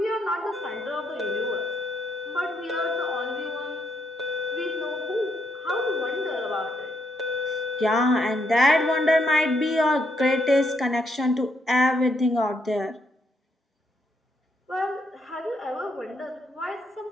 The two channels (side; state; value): both; normal; correlation 0.76